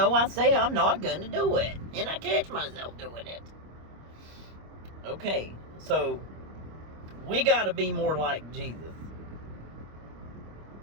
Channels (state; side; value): late; left; 25 ms